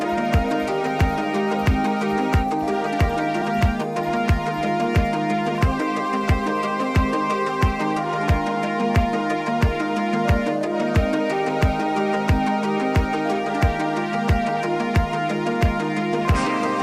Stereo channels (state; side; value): identical; both; correlation 1.00